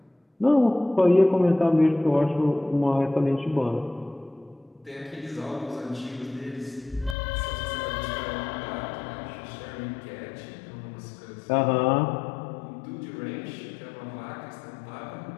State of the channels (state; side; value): drops out; right; at 7.2 s